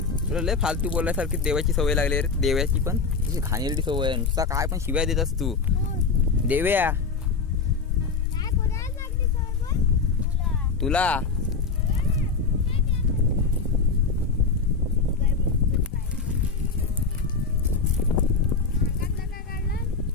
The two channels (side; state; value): right; quieter; 4.8 dB